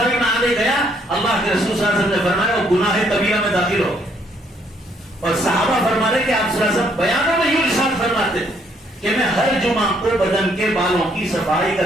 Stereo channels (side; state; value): both; normal; correlation 0.69